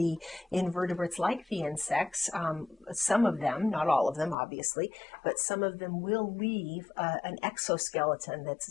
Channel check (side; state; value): right; drops out; at 4.4 s